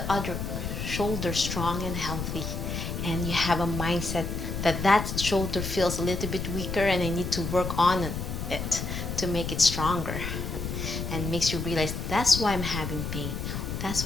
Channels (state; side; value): noise; left; rumble, 4 dB below the sound